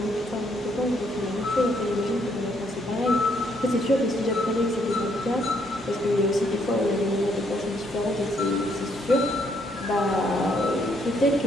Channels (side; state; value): both; normal; correlation 0.71